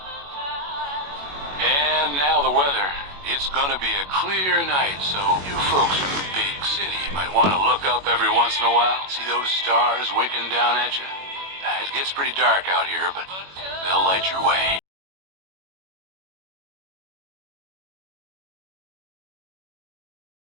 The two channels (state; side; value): late; left; 21 ms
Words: And now the weather. It's gonna be a clear night, so you folks in the big city might want to look up every once in a while, see those stars winking down at you. It gets pretty dark out here, but they'll light your way.